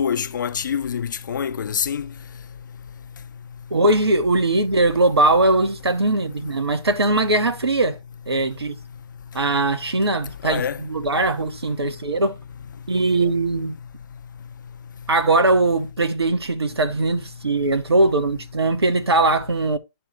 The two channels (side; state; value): both; inverted; correlation -0.45